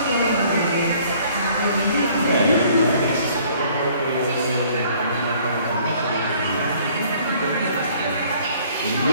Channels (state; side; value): inverted; both; correlation -0.58